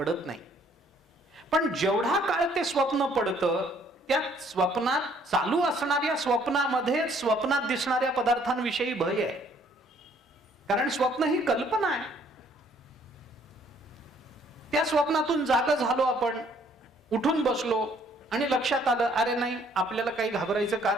नाही. पण जेवढा काळ ते स्वप्न पडतं त्या स्वप्नात चालू असणाऱ्या स्वप्नामध्ये स्वप्नात दिसणाऱ्या पदार्थांविषयी भय आहे. कारण स्वप्न ही कल्पना आहे. त्या स्वप्नातून जाग झालो आपण, उठून बसलो आणि लक्षात आलं, अरे नाही आपल्याला काही घाबरायचं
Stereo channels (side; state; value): both; normal; correlation 0.62